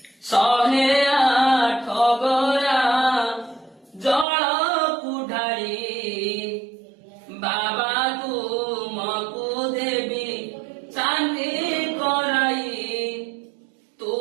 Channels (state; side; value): drops out; left; at 4.2 s